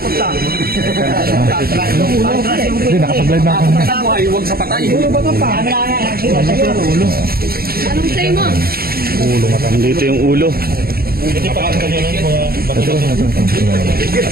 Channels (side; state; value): left; late; 0.44 ms